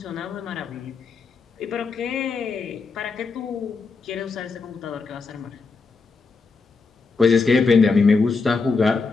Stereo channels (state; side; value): quieter; right; 4.4 dB